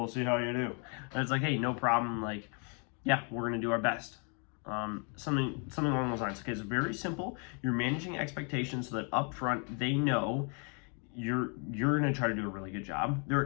see how you do. And it's like, hey, no problem, yeah, we're gonna do our best. Something along those lines. Okay, it's very simple. You're managing expectations so that up front they know you're going to try to do a really good job. They're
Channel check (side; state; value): right; quieter; 38.3 dB